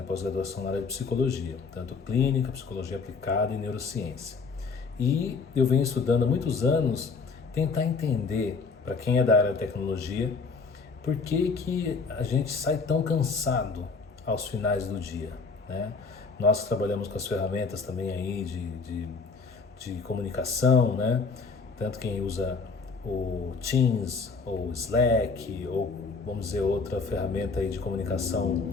pós-graduação na área de psicologia, tanto clínica, psicologia aplicada e neurociência. E eu venho estudando há muitos anos tentar entender, para quem é da área de tecnologia, por que que a gente sai tão cansado aos finais do dia, né? Nós trabalhamos com as ferramentas também aí de comunicação, né? Tanto quem usa o Teams ou Slack ou vamos dizer outra ferramenta aí de comunicação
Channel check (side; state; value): right; quieter; 4.6 dB